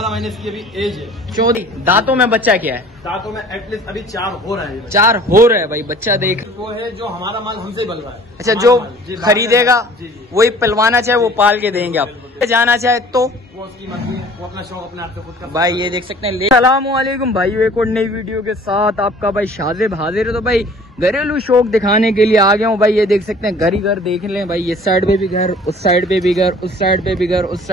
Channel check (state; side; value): normal; both; correlation 0.50